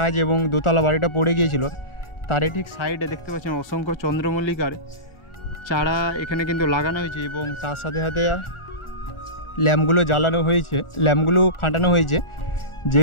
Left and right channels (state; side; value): late; right; 1.4 ms